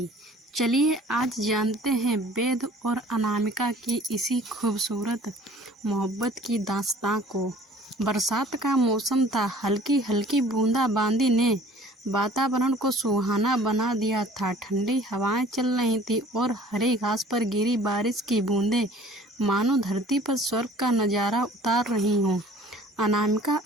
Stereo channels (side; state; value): both; normal; correlation 0.50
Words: चलिए आज जानते हैं वेद और अनामिका की इसी खूबसूरत मोहब्बत की दास्तां को। बरसात का मौसम था, हल्की हल्की बूंदाबांदी ने वातावरण को सुहाना बना दिया था। ठंडी हवाएं चल रही थी और हरी घास पर गिरी बारिश की बूंदें मानो धरती पर स्वर्ग का नज़ारा उतार रही हों। अनामिका